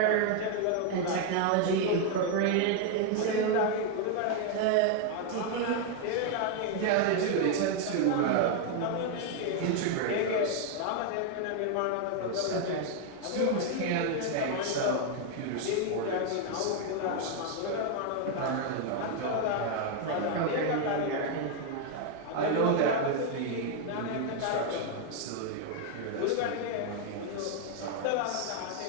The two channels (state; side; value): different; both; correlation 0.00